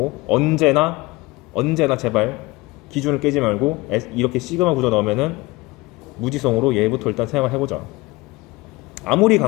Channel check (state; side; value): quieter; right; 22.0 dB